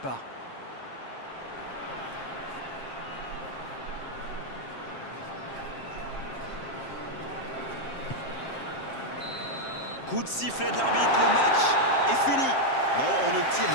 Coup de sifflet de l'arbitre, le match est fini. Non, on ne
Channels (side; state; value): right; late; 7.5 ms